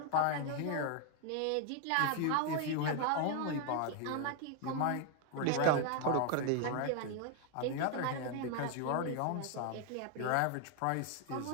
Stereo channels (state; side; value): different; both; correlation 0.01